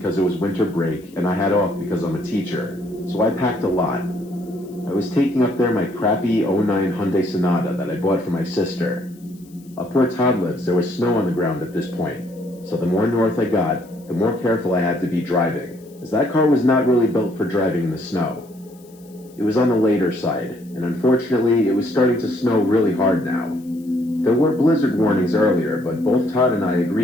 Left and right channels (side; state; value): left; noise; hiss, 28 dB below the sound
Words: it was winter break and I had off because I'm a teacher, so I packed a lot. I was taking up there my crappy '09 Hyundai Sonata that I bought for my sister. Up where Todd lives, there was snow on the ground at this point, so the more north I got, the more careful I had to be driving, as that car was not really built for driving in the snow. It was on the later side, and unfortunately, it was starting to snow really hard now. There were blizzard warnings earlier, but both Todd and I